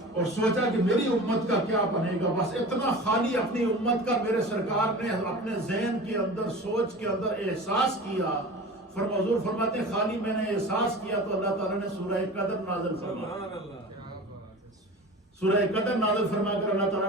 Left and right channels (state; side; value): normal; both; correlation 0.36